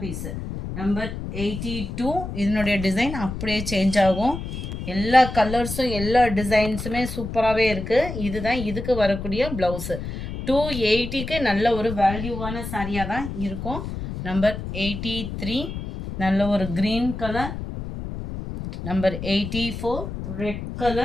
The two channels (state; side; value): noise; left; rumble, 7 dB below the sound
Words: நம்பர் 82 இதனுடைய டிசைன் அப்படியே சேஞ்ச் ஆகும். எல்லா கலர்ஸும் எல்லா டிசைன்ஸுமே சூப்பராகவே இருக்குது. இதுதான் இதுக்கு வரக்கூடிய ப்ளவுஸு. 280க்கு நல்ல ஒரு வேல்யூவான சாரியாக தான் இருக்கும். நம்பர் 83 நல்ல ஒரு green colour. Number 84 red